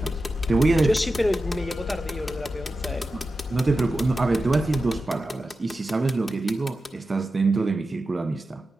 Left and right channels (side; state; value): both; normal; correlation 0.92